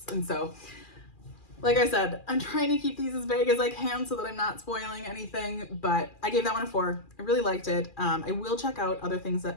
And so, like I said, I'm trying to keep these as vague as I can so that I'm not spoiling anything, but I gave that one a 4. I really liked it. I will check out other things that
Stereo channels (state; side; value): late; right; 2.4 ms